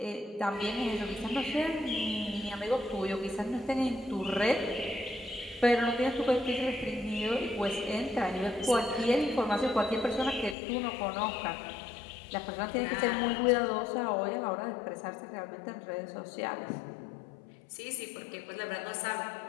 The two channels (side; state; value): right; drops out; at 10.6 s